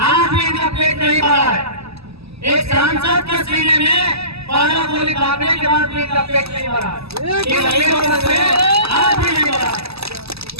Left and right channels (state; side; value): late; left; 0.78 ms